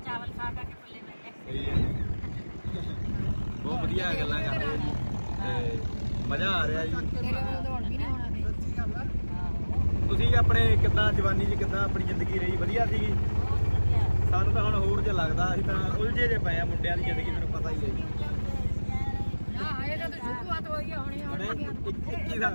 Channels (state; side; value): inverted; both; correlation -1.00